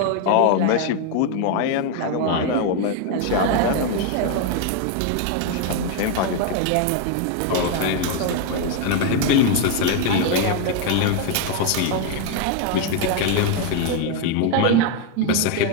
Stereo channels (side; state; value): both; different; correlation 0.01